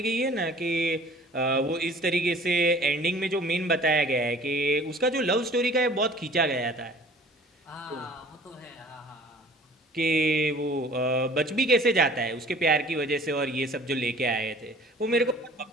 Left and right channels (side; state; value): both; normal; correlation 0.49